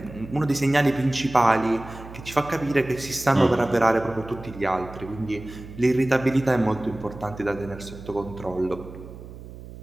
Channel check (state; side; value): noise; right; hum, 15 dB below the sound